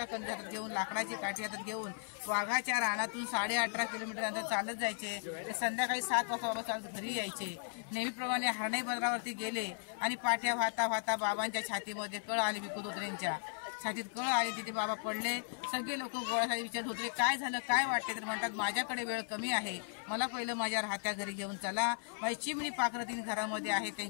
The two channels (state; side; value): silent; right; 53 dB below the other